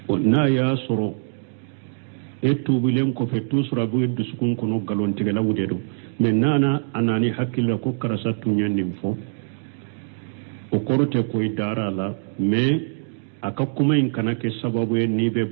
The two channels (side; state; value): left; silent; digital silence